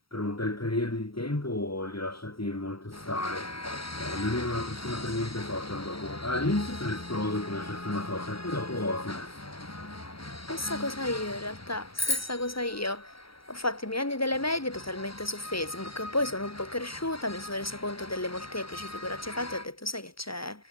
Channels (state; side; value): late; right; 0.75 ms